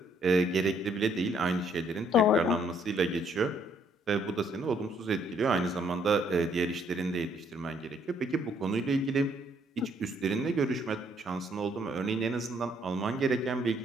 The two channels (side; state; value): both; normal; correlation 0.67